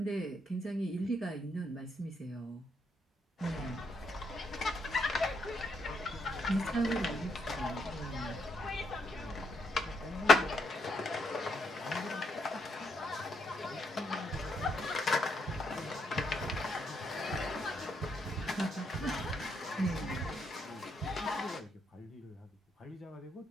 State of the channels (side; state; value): both; normal; correlation 0.77